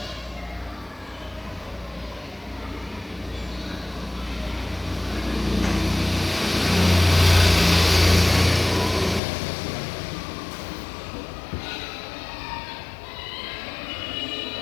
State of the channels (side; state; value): right; drops out; at 9.2 s